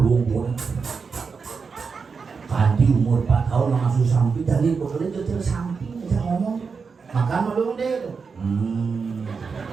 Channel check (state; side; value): quieter; left; 5.3 dB